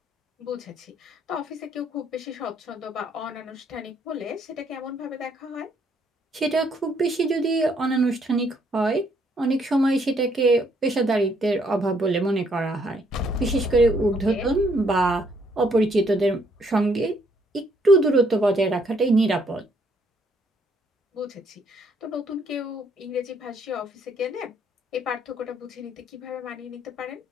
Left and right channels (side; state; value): both; normal; correlation 0.69